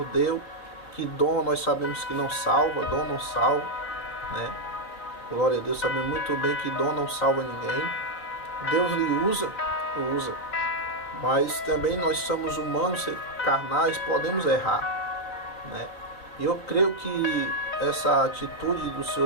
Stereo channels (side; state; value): right; late; 3.9 ms